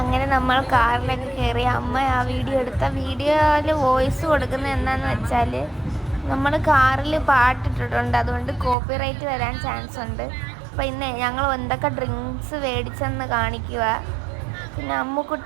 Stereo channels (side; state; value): left; drops out; at 8.8 s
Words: നമ്മൾ കാറിലൊക്കെ കയറി. അമ്മ ആ വീഡിയോ എടുത്ത വീഡിയോയിൽ വോയിസ് കൊടുക്കുന്നത് എന്താണെന്ന് വെച്ചാൽ, നമ്മൾ കാറിൽ പാട്ടിട്ടിട്ടുണ്ട്, അതുകൊണ്ട് കോപ്പിറൈറ്റ് വരാൻ ചാൻസ് ഉണ്ട്. അപ്പോൾ ഇന്ന് ഞങ്ങൾ എന്തൊക്കെ ഡ്രിങ്ക്സ് മേടിച്ചെന്ന് കാണിക്കുക. പിന്നെ